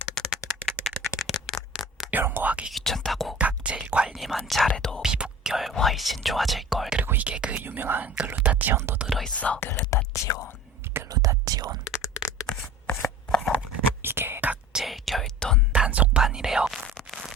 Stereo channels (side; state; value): both; normal; correlation 0.39